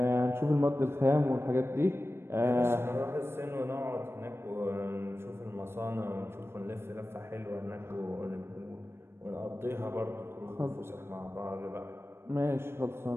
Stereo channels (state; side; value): late; left; 0.12 ms